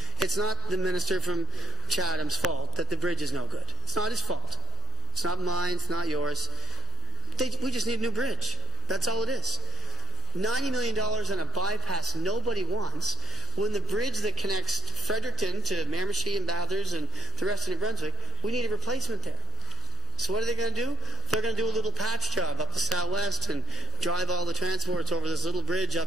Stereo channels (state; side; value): normal; both; correlation 0.35